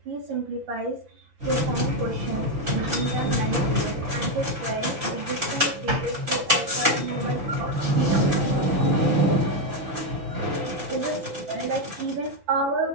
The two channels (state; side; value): late; left; 5.9 ms